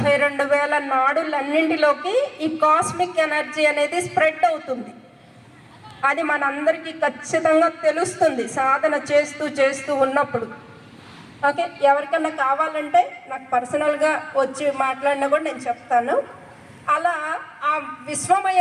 నాడులన్నింటిలోకి ఈ కాస్మిక్ ఎనర్జీ అనేది స్ప్రెడ్ అవుతుంది. అది మనందరికీ ఖచ్చితంగా తెలుస్తుంది సాధన చేస్తూ ఉన్నప్పుడు. ఓకే, ఎవరికన్నా కావాలంటే నాకు పర్సనల్గా వచ్చి మాట్లాడినా కూడా నేను చెప్తాను. అలా ఆ విశ్వమయ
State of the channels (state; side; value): identical; both; correlation 1.00